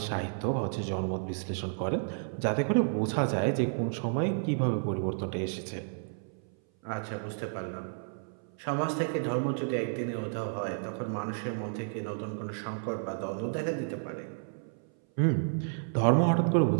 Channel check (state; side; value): silent; left; 57 dB below the other